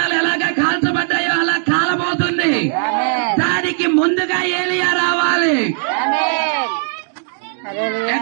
ఎలాగా కాల్చబడ్డాయో అలా కాలబోతుంది. దానికి ముందుగా ఏలియా రావాలి.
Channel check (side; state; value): left; silent; digital silence